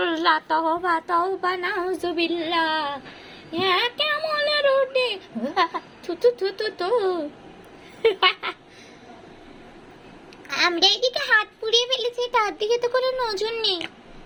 তাওবা তাওবা নাউজুবিল্লাহ। হ্যাঁ কেমন রুটি, থু থু থু থু থু। আমরা এদিকে হাত পুড়িয়ে ফেলেছি, তার দিকে তো কোনো নজর নেই।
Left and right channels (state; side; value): identical; both; correlation 1.00